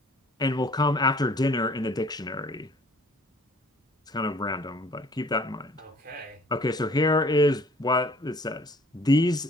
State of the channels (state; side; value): normal; both; correlation 0.54